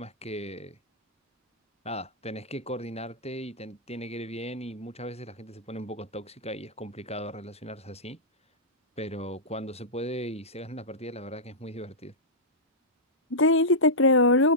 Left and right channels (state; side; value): normal; both; correlation -0.12